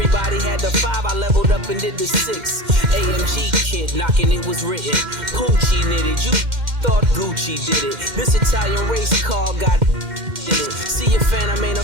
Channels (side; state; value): left; late; 2.1 ms